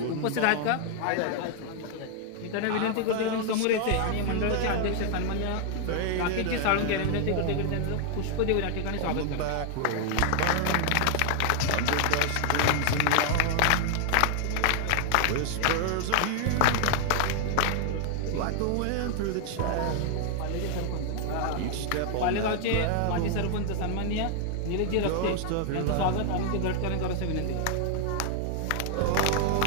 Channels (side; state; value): both; different; correlation 0.00